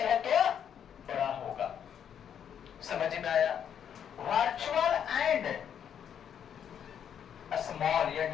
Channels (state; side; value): quieter; right; 8.7 dB